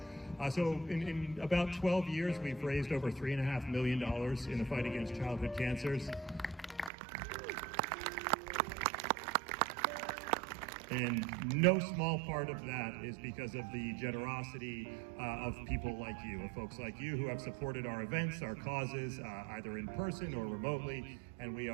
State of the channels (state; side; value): drops out; left; at 6.9 s